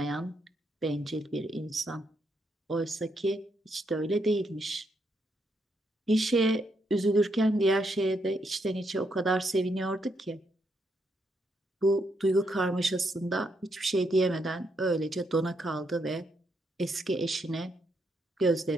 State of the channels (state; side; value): normal; both; correlation 0.78